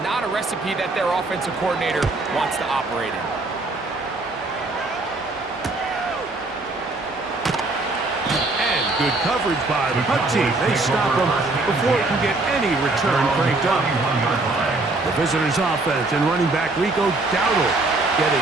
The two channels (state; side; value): quieter; left; 3.1 dB